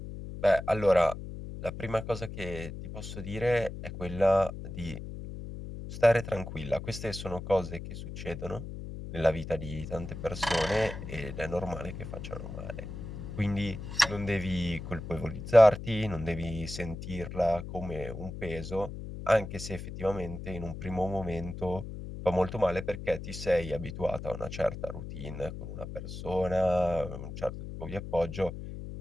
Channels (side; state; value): left; noise; hum, 9 dB below the sound